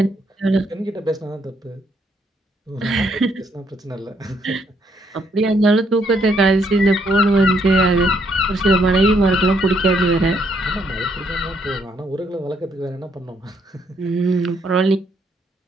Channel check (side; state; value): both; normal; correlation 0.72